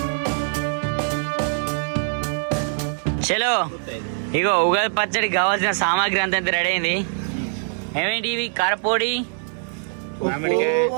చలో ఇగో ఉగాది పచ్చడికి కావాల్సిన సామాగ్రి అంతా రెడీ అయింది. ఏమేంటి ఇవి? కారపొడి,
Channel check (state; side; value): silent; left; digital silence